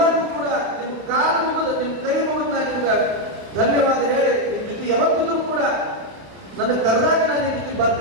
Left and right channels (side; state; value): left; late; 31 ms